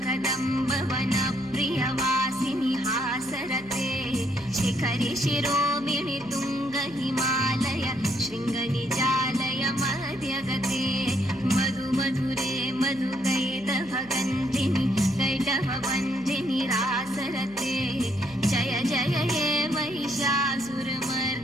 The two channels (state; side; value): noise; right; hum, 23 dB below the sound